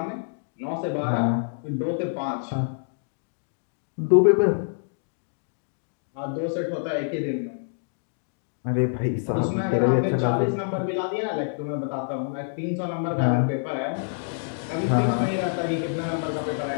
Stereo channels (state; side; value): silent; right; digital silence